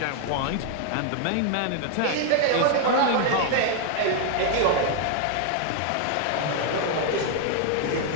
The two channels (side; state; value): both; different; correlation 0.00